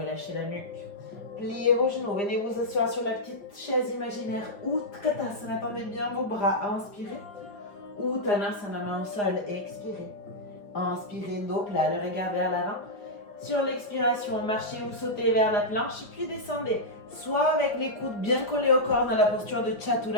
la nuque. Pliez vos genoux, venez vous asseoir sur la petite chaise imaginaire Utkatasana, tendez bien vos bras, inspirez. Uttanasana, main au sol, expirez. Inspirez, dos plat, le regard vers l'avant. Sur l'expiration, marchez ou sautez vers la planche, puis descendez. Soit avec les coudes bien collés au corps dans la posture de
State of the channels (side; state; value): right; late; 5.0 ms